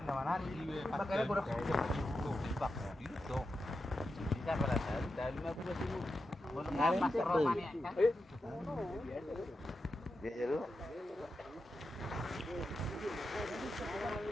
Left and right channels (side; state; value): both; normal; correlation 0.89